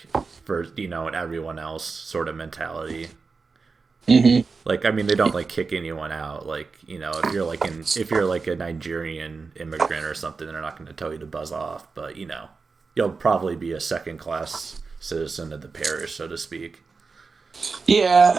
for and everyone else sort of mentality. Mm-hmm. Like I mean, they don't like kick anyone out. Like if you're like a Nigerian immigrant or something, they're not going to tell you to buzz off. But you'll probably be a second class citizen of the parish, so to speak.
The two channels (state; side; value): quieter; left; 4.5 dB